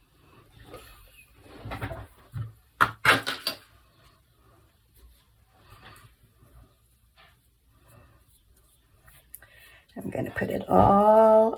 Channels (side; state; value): both; identical; correlation 1.00